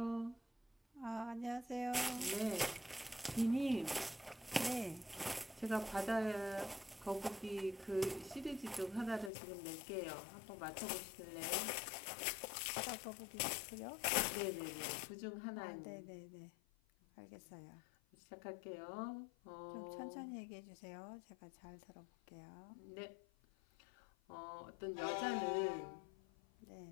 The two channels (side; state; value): right; drops out; at 9.3 s